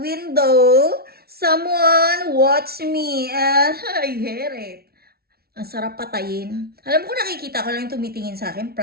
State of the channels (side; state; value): left; late; 0.45 ms